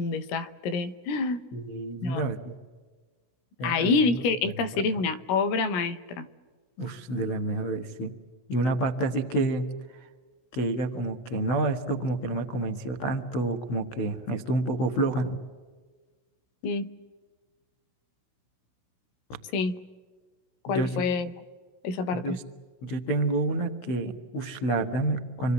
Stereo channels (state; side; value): late; right; 16 ms